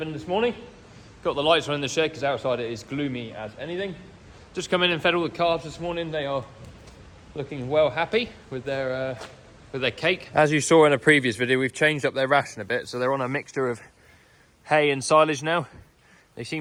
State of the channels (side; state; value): both; identical; correlation 1.00